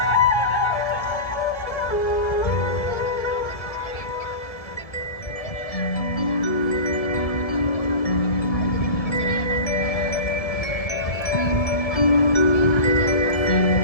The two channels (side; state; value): right; late; 1.6 ms